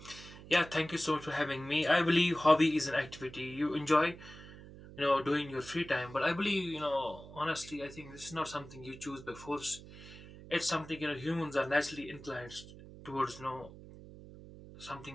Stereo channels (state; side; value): noise; right; hum, 16 dB below the sound